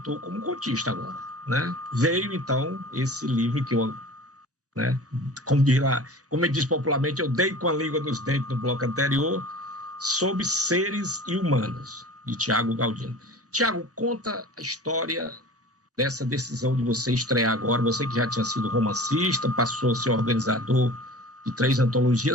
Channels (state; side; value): normal; both; correlation 0.39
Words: como contista agora, né? Veio, então, esse livro que eu, né, como eu disse popularmente, eu dei com a língua nos dentes no bloco anterior, Sobre Seres e Humanos, de Tiago Galdino. Tiago, conta a história dessa decisão de você estrear agora, você que já tinha sido romancista, passou a ser organizador de 3